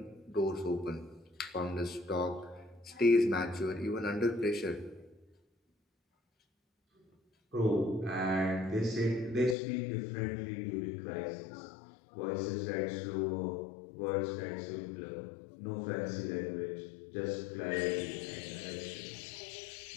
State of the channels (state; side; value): drops out; right; at 9.6 s